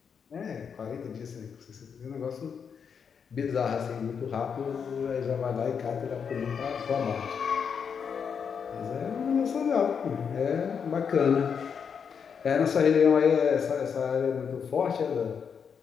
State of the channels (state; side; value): quieter; right; 6.7 dB